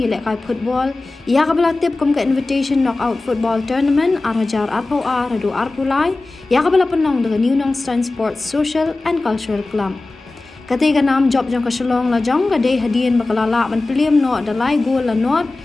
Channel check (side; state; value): right; quieter; 3.2 dB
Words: lekai football, ia ka bela tip kom ke invitation knockout football tournament arajar arpo radu arpulai, ia ka bela penong dengan Nnsscc Sports Social and Cultural Club. Ketiga nam job jong ke Shillong Lajong ke dei hadian bakalala ban peliam no dalai gol la not,